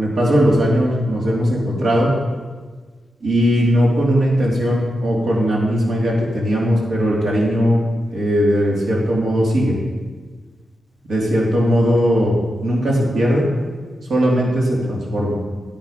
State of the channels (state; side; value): normal; both; correlation 0.88